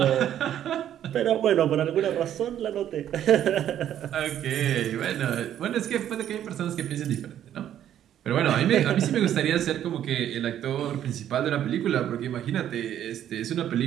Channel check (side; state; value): left; quieter; 10.8 dB